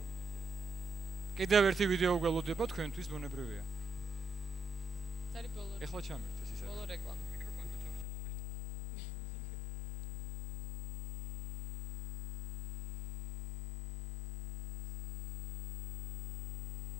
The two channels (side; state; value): right; drops out; at 8.1 s